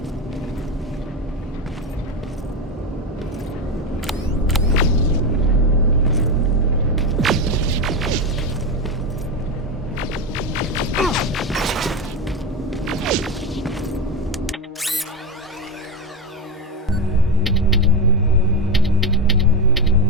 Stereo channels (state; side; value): normal; both; correlation 0.15